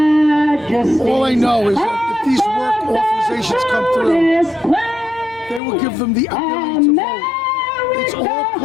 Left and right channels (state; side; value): drops out; right; at 5.6 s